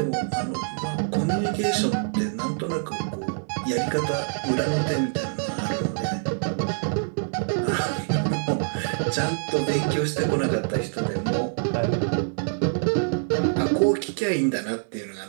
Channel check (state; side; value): silent; left; digital silence